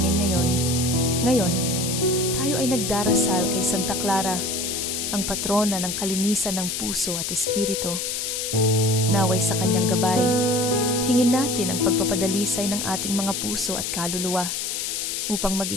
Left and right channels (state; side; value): noise; left; hiss, 2 dB below the sound